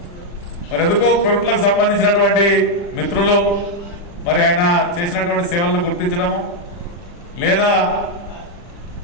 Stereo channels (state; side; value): late; right; 40 ms